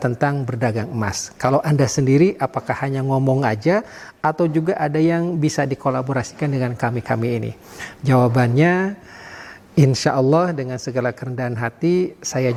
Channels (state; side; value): identical; both; correlation 1.00